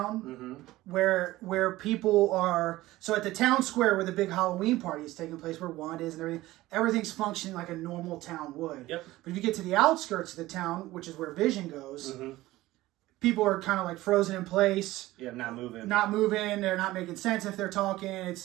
where people are. So at the town square where the big Halloween party is taking place, where Wanda is and everything's functioning like a normal town would. Yep. But if you get to the outskirts of the town, which is where Vision goes, people are kind of frozen in place. Yeah, not moving. They're not making sense if they're talking.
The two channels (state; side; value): quieter; left; 17.4 dB